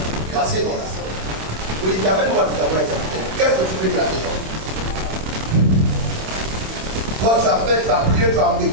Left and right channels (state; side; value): late; left; 26 ms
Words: Grâce non. Vous dites, amène-moi tout d'abord. Qu'est-ce que tu peux dire à ces gens? Toi, tu as fait, tu as prié, tu as